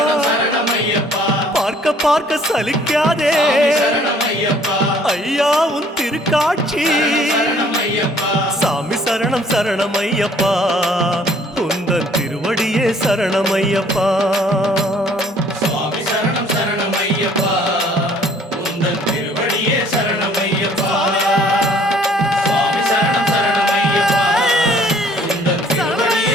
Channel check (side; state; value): both; normal; correlation 0.58